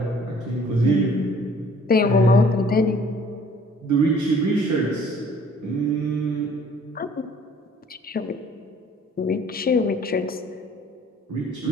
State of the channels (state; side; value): normal; both; correlation 0.55